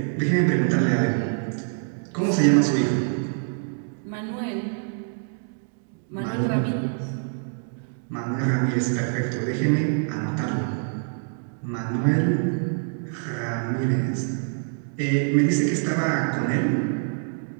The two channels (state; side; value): silent; left; digital silence